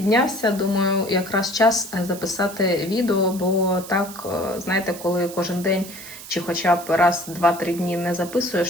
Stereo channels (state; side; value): noise; right; hiss, 14 dB below the sound